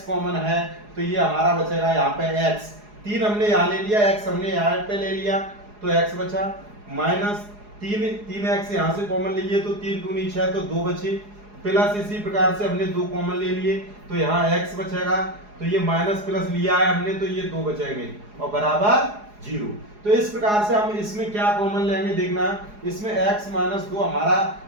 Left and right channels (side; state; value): left; late; 4.8 ms